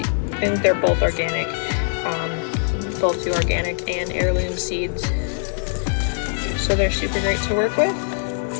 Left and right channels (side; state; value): right; silent; digital silence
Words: both organic, both do organic and heirloom seeds. So they're super great to work with.